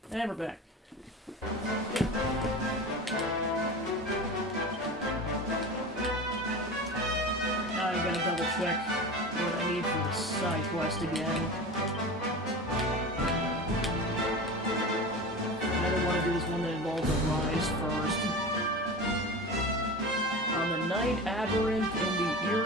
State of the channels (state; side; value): normal; both; correlation 0.30